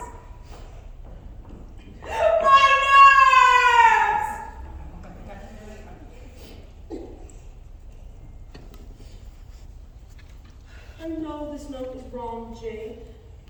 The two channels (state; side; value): identical; both; correlation 1.00